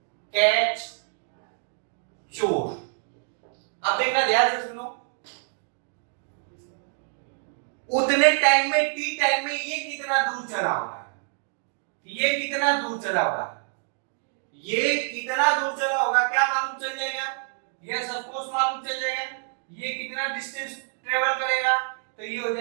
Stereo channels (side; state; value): left; silent; 59 dB below the other